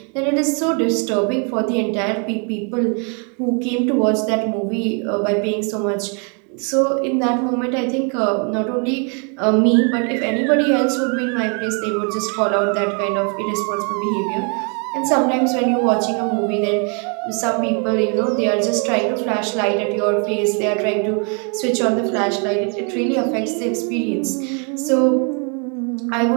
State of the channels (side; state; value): left; quieter; 38.0 dB